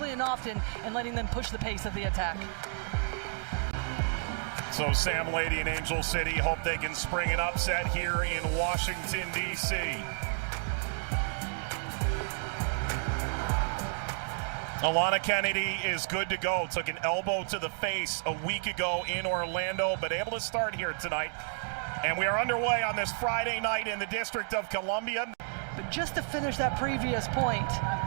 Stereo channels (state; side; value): silent; left; 57 dB below the other